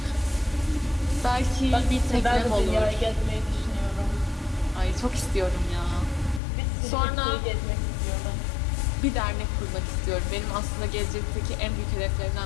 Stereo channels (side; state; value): right; drops out; at 6.4 s